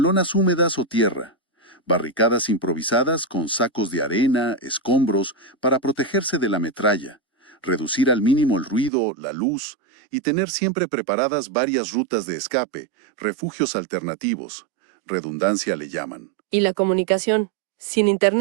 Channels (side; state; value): left; drops out; at 8.9 s